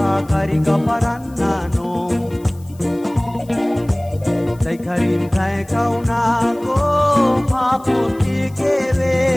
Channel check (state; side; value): noise; left; hiss, 27 dB below the sound